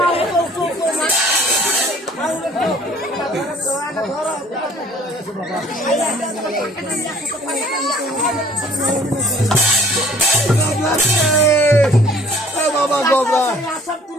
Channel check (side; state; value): both; normal; correlation 0.54